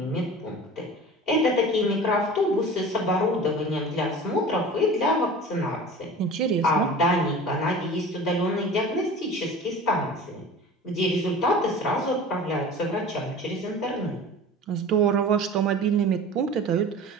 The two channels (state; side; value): normal; both; correlation 0.38